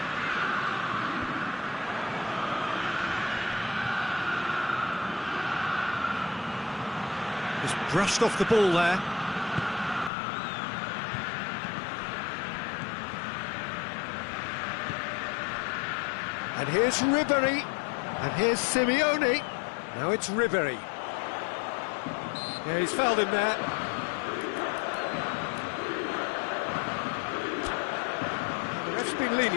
Just brushed off the ball there. And here's Ribery, and here's Simeone. Now it's Ribery. Yeah, he's fouled him there. The ref's been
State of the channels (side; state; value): right; drops out; at 10.1 s